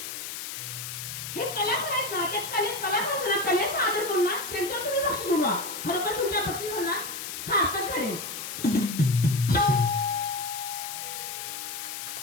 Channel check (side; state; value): left; noise; hiss, 7 dB below the sound